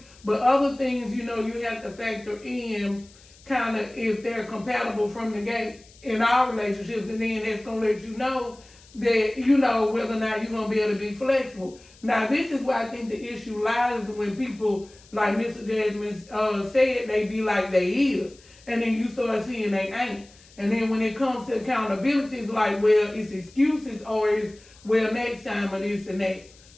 but other things, you have to factor in kind of if they're compatible from the gate in our relationships, and then that's going to let you know that, whether or not you're going to be able to be flexible. Now, this is where I think the issue lies when people, like Mr. Jazzman said, they be like they is, and then you start seeing they ain't. And then when it comes to accountability, it's like, well, it's excuses or it's, well, next time or this and that.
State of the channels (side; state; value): left; noise; hiss, 25 dB below the sound